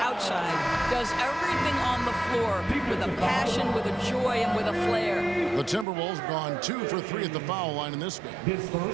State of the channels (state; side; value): drops out; left; at 5.9 s